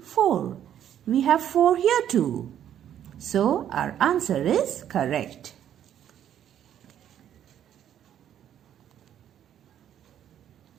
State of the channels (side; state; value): left; quieter; 10.3 dB